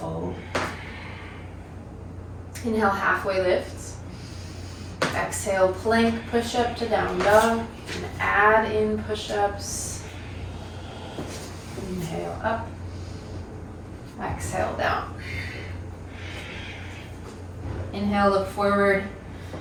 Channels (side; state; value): both; identical; correlation 1.00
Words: Inhale, halfway lifts. Exhale, plank, push up to down dog. And add in push-ups. Inhale, up. Exhale, down. Inhale, look forward.